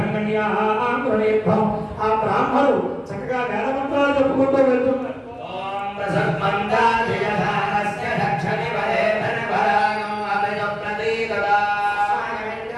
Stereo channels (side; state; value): both; identical; correlation 1.00